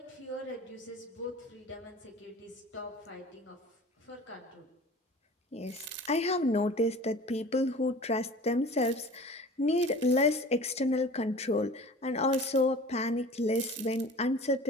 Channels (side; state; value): both; normal; correlation 0.42